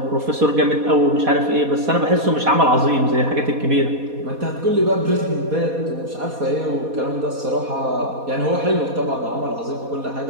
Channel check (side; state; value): left; late; 4.2 ms